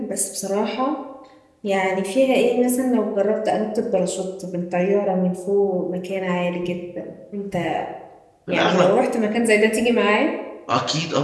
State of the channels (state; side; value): identical; both; correlation 1.00